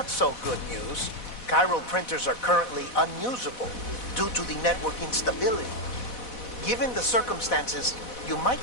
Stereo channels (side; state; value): right; late; 4.1 ms